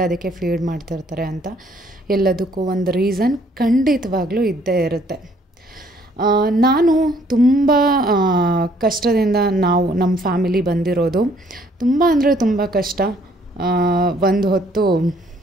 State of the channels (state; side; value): normal; both; correlation 0.63